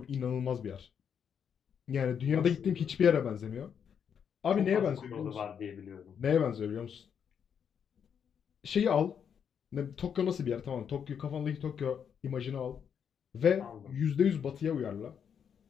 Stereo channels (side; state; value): right; quieter; 7.7 dB